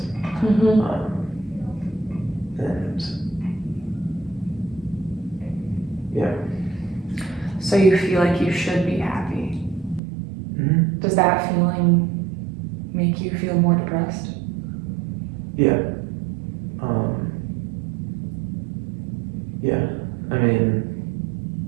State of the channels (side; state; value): left; drops out; at 10.0 s